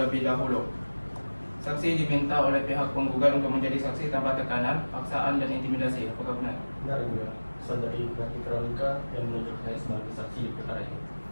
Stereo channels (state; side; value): inverted; both; correlation -1.00